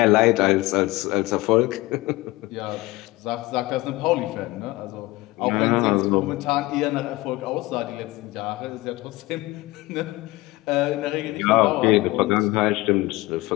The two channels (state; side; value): quieter; right; 20.2 dB